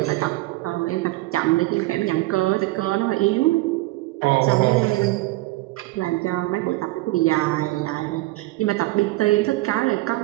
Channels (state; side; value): quieter; left; 19.8 dB